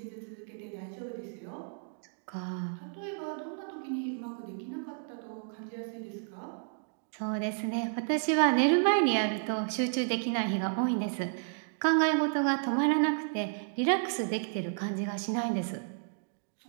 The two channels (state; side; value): silent; left; digital silence